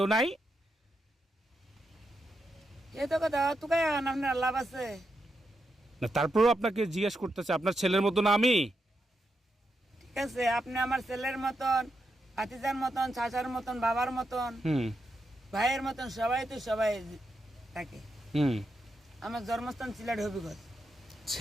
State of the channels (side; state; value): both; normal; correlation 0.84